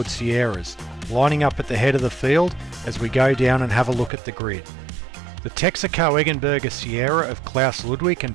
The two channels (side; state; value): left; drops out; at 4.1 s